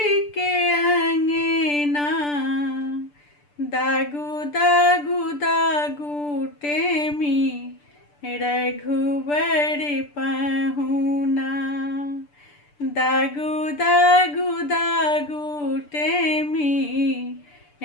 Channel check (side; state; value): right; late; 6.8 ms